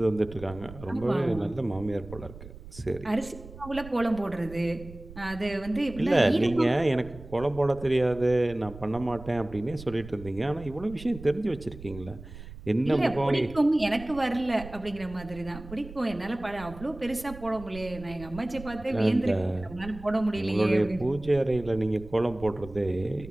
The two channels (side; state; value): right; noise; rumble, 15 dB below the sound